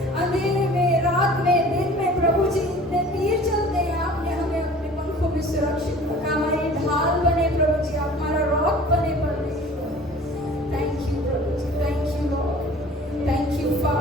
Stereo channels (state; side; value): normal; both; correlation 0.46